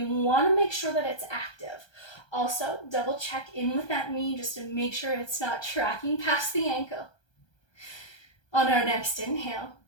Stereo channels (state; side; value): late; right; 1.2 ms